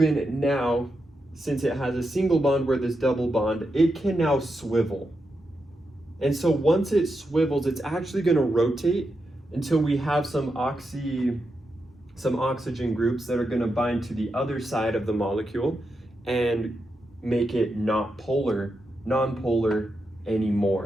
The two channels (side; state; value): both; normal; correlation 0.86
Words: now, since it has a single bond where this double bond, it can now swivel. And so once it swivels, it's actually going to rotate until we have some oxygen groups that are going to bind to the other side of the molecule and make it not non-polar